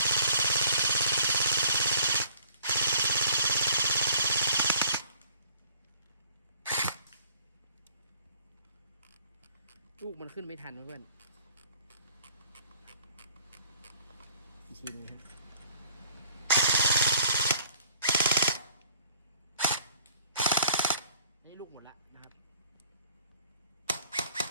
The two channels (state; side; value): inverted; both; correlation -0.57